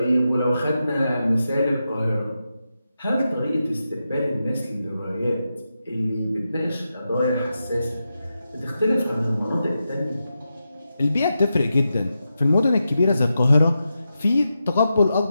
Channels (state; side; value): inverted; both; correlation -0.89